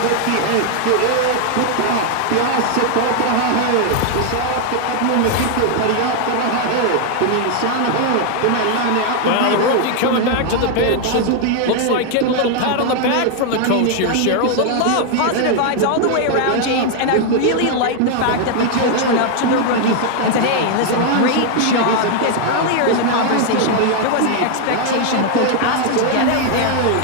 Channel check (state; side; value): different; both; correlation 0.00